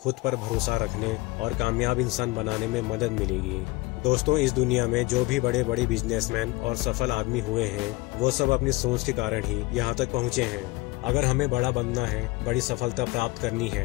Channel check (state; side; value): quieter; right; 22.2 dB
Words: पर भरोसा रखने और कामयाब इंसान बनाने में मदद मिलेगी। दोस्तों, इस दुनिया में जो भी बड़े बड़े बिजनेसमैन और सफल आदमी हुए हैं वो सब अपनी सोच के कारण ही यहाँ तक पहुँचे हैं। अगर हमें बड़ा बनना है, बड़ी सफलता प्राप्त करनी